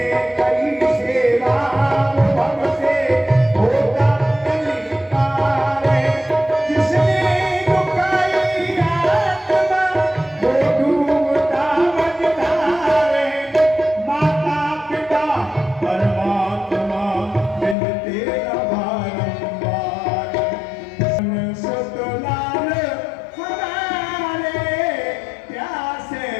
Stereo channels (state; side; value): drops out; right; at 17.8 s